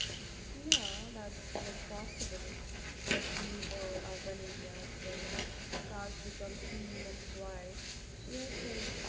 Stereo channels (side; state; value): both; identical; correlation 1.00